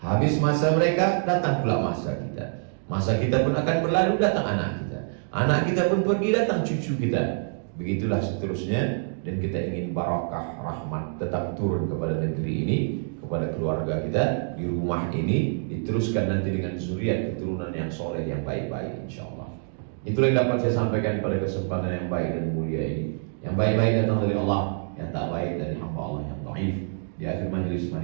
Habis masa mereka, datang pula masa kita. Masa kita pun akan berlalu, datang anak kita. Anak kita pun pergi, datang cucu kita. Begitulah seterusnya. Dan kita ingin barakah, rahmat tetap turun kepada negeri ini, kepada keluarga kita, di rumah ini, diteruskan nanti dengan zuriat keturunan yang soleh, yang baik-baik insyaAllah. Itulah yang dapat saya sampaikan pada kesempatan yang baik dan mulia ini. Yang baik-baik datang dari Allah, yang tak baik dari hamba Allah yang dhaif. Di akhir majelis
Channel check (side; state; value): left; silent; digital silence